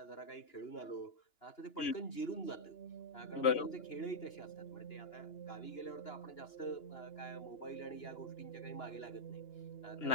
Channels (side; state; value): right; late; 2.9 ms